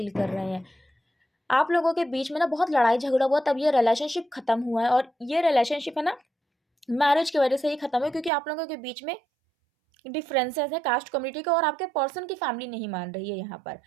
कर रहे हैं। आप लोगों के बीच में ना बहुत लड़ाई झगड़ा हुआ, तब ये रिलेशनशिप खत्म हुआ है, और ये रिलेशनशिप है ना मैरिज की वजह से ही खत्म है, क्योंकि आप लोगों के बीच में डिफरेंसेस है कास्ट कम्युनिटी का, और आपके पर्सन की फैमिली नहीं मान रही है यहाँ पर।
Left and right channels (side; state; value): left; drops out; at 8.3 s